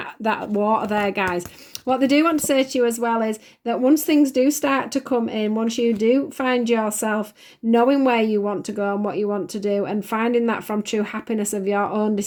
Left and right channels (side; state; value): both; identical; correlation 1.00